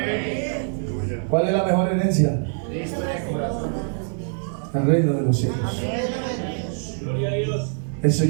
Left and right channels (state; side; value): silent; left; digital silence